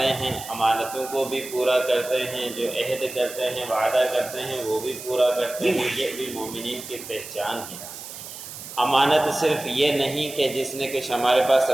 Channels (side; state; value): right; noise; hiss, 12 dB below the sound